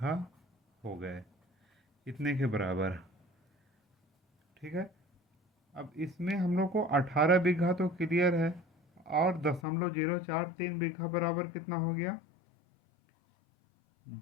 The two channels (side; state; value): right; drops out; at 9.6 s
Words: हो गए, इतने के बराबर। ठीक है, अब इसमें हम लोग को 18 बीघा तो क्लियर है, और 0.043 बीघा बराबर कितना हो गया,